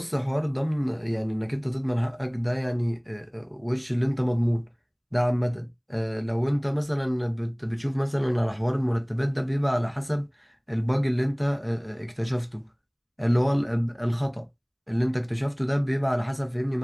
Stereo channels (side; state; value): both; identical; correlation 1.00